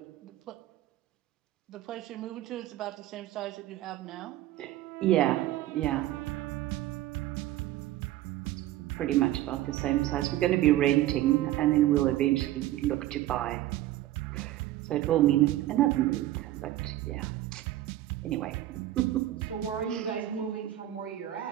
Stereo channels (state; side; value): quieter; left; 14.4 dB